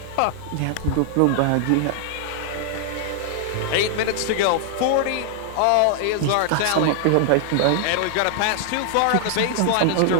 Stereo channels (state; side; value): different; both; correlation 0.00